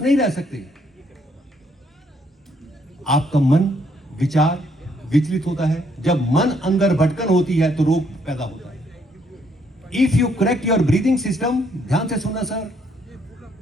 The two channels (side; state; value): both; normal; correlation 0.70